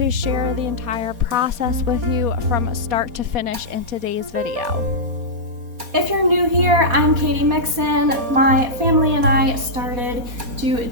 share the entire process with you from start to finish in today's video. If you're new here, I'm Katie Mixon. My family and I started to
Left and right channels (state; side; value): late; left; 4.2 ms